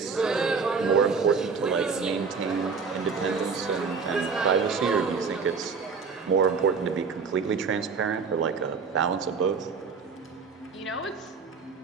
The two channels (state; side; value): quieter; left; 5.2 dB